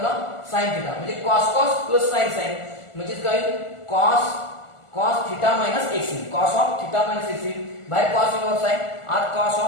ला sin थिटा म्हणजे cos प्लस sin म्हणजे काय cos theta x cos of theta x बाहेर cos इनव्हर्स आहे आत cos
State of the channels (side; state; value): right; late; 1.4 ms